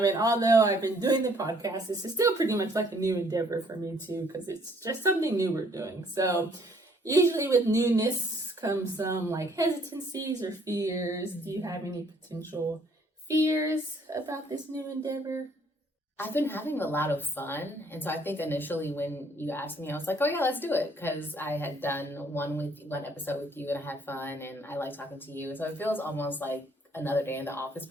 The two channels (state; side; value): normal; both; correlation 0.63